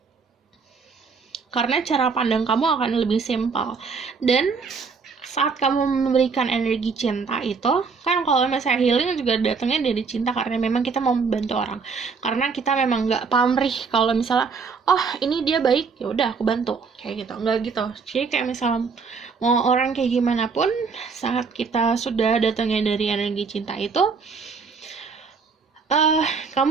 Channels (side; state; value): left; quieter; 5.1 dB